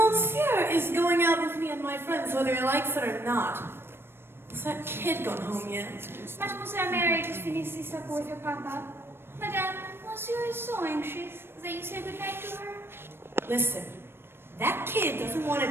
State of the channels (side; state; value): left; late; 0.11 ms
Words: is going out with me and my friends, whether he likes it or not. Has that kid gone home yet? Mademoiselle Mary just finished this supper with her papa. Madame, Monsieur is so anxious that you say goodnight to her. Listen, that kid doesn't want to